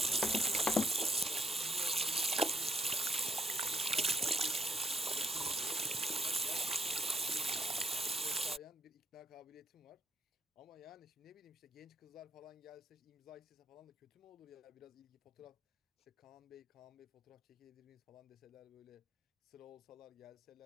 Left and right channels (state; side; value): normal; both; correlation 0.70